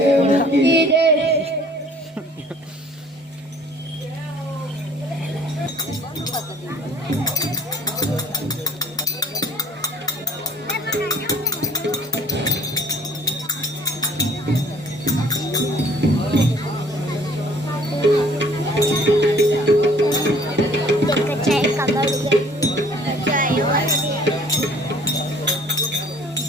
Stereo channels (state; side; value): normal; both; correlation 0.54